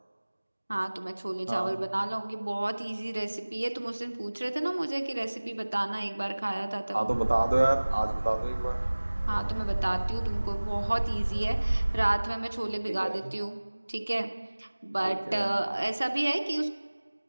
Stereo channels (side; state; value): both; inverted; correlation -1.00